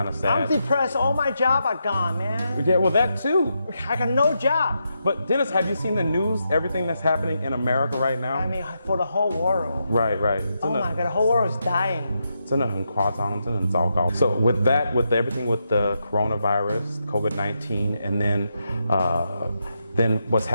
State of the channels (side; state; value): both; inverted; correlation -0.83